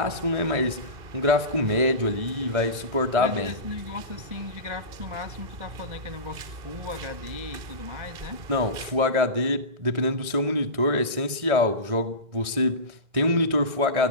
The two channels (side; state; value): left; late; 1.6 ms